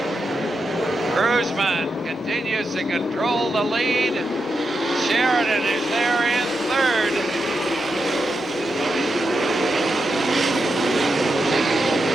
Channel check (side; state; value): both; normal; correlation 0.86